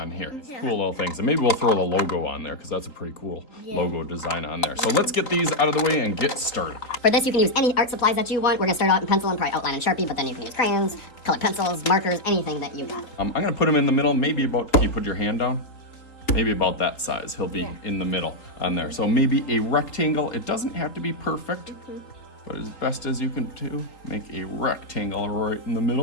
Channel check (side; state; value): right; late; 3.8 ms